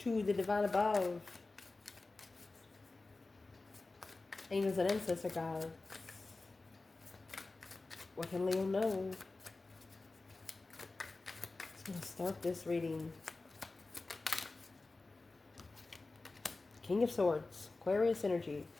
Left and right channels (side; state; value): right; quieter; 3.4 dB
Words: the divine above, angels and ancestor guides. What can Leo know? I'm going to start this reading. King of Swords, Aquarius energy,